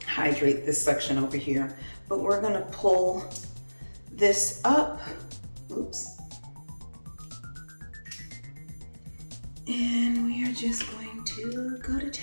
hydrate this section over here, but we're gonna pull this up. Oops. And we are just going to go to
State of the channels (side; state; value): both; inverted; correlation -1.00